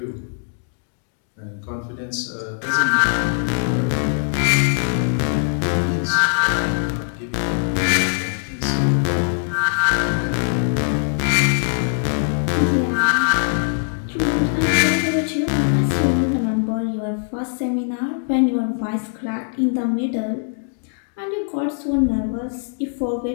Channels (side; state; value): right; silent; 65 dB below the other